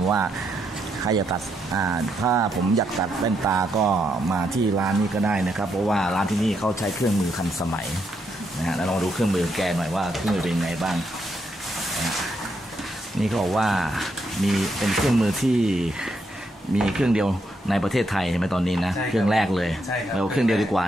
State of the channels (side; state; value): both; normal; correlation 0.79